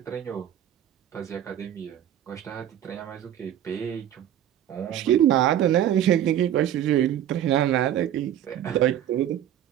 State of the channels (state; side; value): quieter; left; 11.1 dB